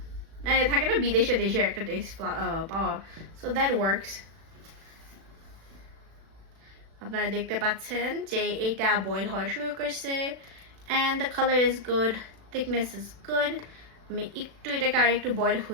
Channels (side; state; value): left; late; 36 ms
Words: থাকে না বিদেশে দেশে একটা টেস্ট পাওয়া সো দ্যাট ওয়ার্কস আপনারা দেখতে পাচ্ছেন যে এইটা বয়েল হওয়া শুরু করছে and the color is good thickness is good আমি একটু এটাকে আর একটু বয়েল